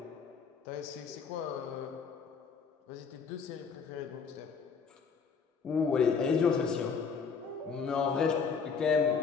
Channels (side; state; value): right; quieter; 5.7 dB